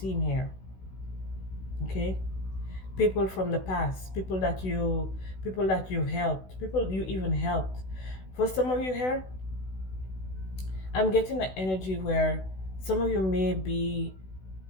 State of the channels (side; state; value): right; late; 16 ms